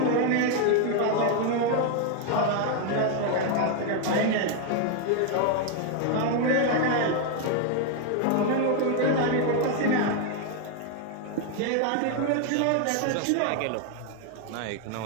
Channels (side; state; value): both; different; correlation 0.01